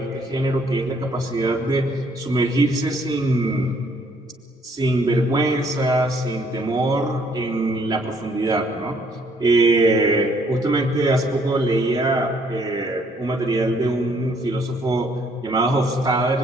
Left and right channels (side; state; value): both; normal; correlation 0.65